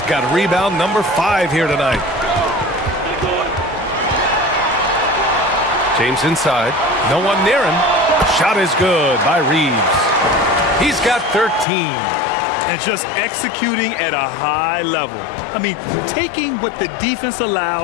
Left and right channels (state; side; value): drops out; right; at 11.7 s